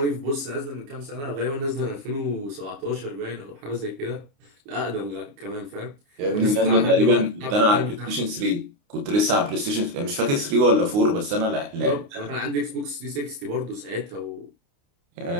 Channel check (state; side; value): late; left; 29 ms